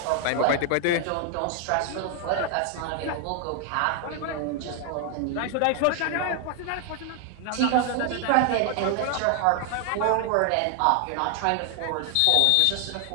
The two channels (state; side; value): different; both; correlation 0.00